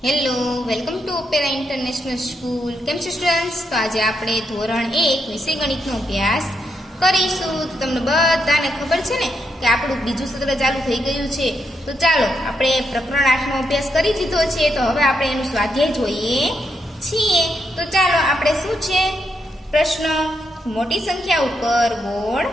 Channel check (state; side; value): normal; both; correlation 0.81